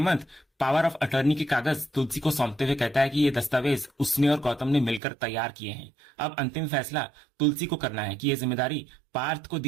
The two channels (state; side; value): drops out; left; at 5.0 s